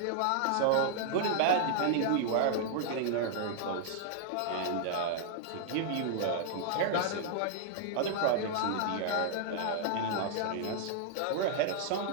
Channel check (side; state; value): both; different; correlation -0.01